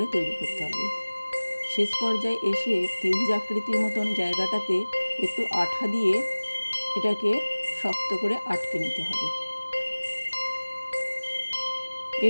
তৈরি করতে হবে। শেষ পর্যায়ে এসে ত্রিভুজ আকৃতির মতন জায়গাটাতে একটু আঠা দিয়ে এটাকে শক্ত করে আটকে নিতে হবে।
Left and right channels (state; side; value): inverted; both; correlation -1.00